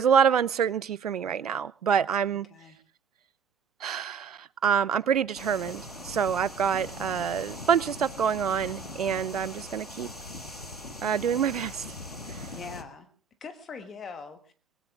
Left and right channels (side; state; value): left; quieter; 6.9 dB